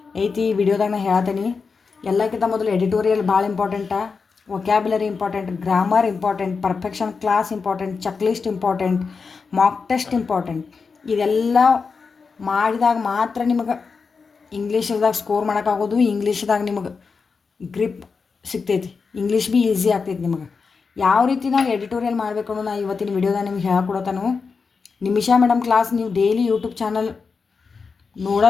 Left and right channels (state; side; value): quieter; right; 5.0 dB